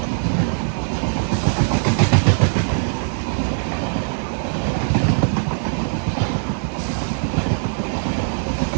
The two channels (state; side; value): silent; left; 65 dB below the other